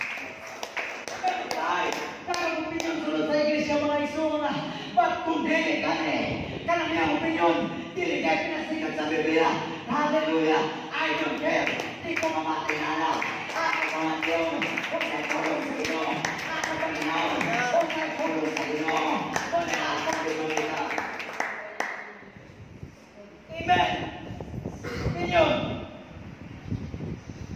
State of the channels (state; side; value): identical; both; correlation 1.00